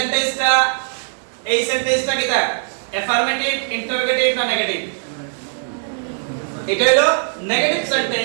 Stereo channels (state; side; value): silent; left; digital silence